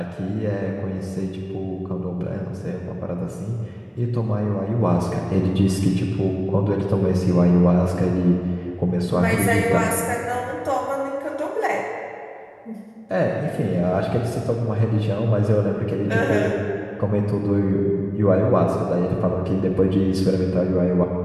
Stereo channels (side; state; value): both; identical; correlation 1.00